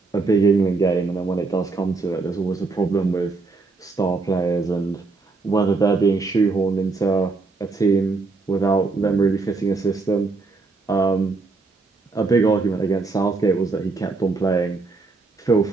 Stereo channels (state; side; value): quieter; left; 3.9 dB